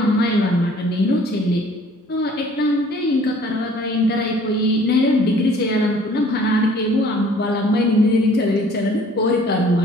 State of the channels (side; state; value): both; normal; correlation 0.55